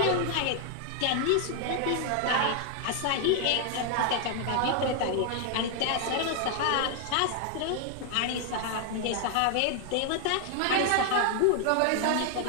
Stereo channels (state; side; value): different; both; correlation 0.00